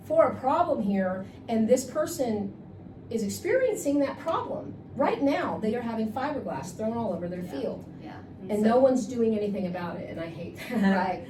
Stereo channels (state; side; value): identical; both; correlation 1.00